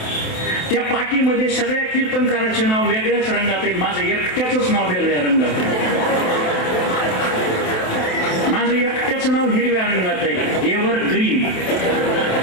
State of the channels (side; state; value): right; late; 27 ms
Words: त्या पाठीमध्ये सगळ्या कीर्तनकाराचे नाव वेगळ्याच रंगात आहे, माझं एकट्याच नाव वेगळ्या रंगात आहे. माझं एकट्याच नाव हिरव्या रंगात आहे, एव्हर ग्रीन.